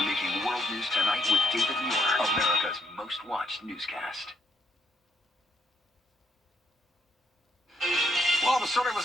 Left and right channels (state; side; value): normal; both; correlation 0.73